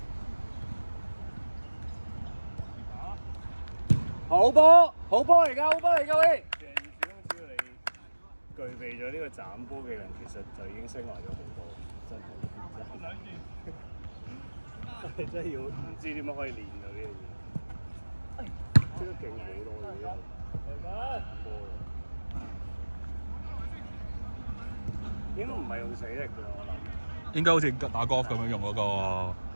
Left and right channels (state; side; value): inverted; both; correlation -1.00